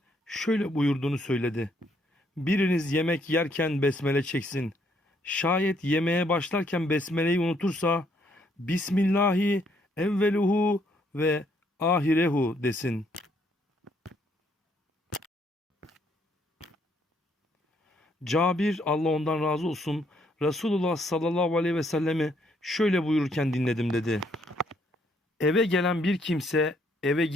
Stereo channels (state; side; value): normal; both; correlation 0.70